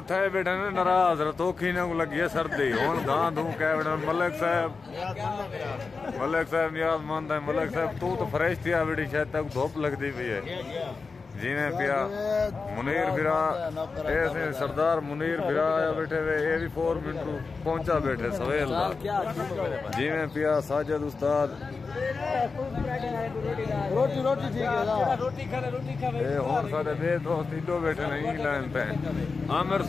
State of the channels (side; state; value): right; quieter; 4.5 dB